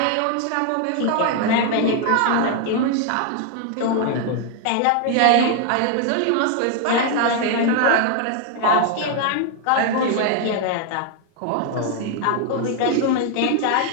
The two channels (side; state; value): both; different; correlation 0.00